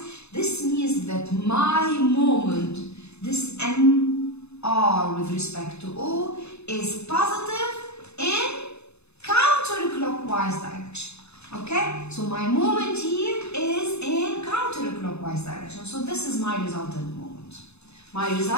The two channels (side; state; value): right; late; 0.80 ms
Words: This means that my moment, this mr with respect to O, is positive in counterclockwise direction. Okay, so my moment here is in counterclockwise direction. So this is my resultant moment. My